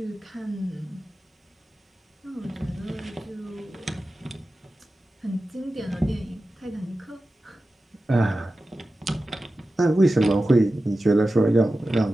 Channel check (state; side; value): normal; both; correlation 0.94